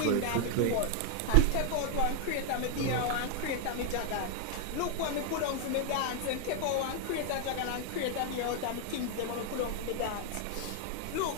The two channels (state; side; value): different; both; correlation 0.00